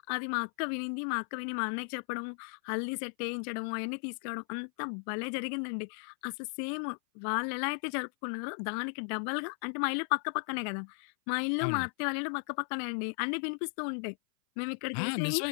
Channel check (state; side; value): silent; right; 54 dB below the other